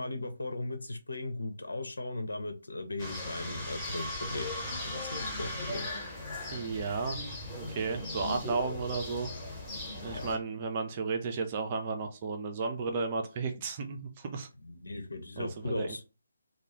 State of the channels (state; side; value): inverted; both; correlation -0.70